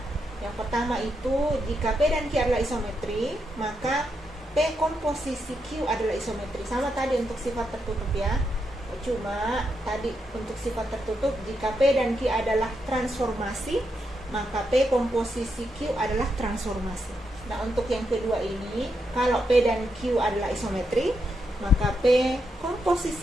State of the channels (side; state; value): both; normal; correlation 0.82